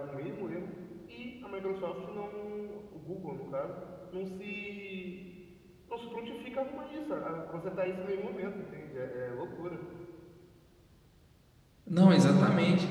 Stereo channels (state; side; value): identical; both; correlation 1.00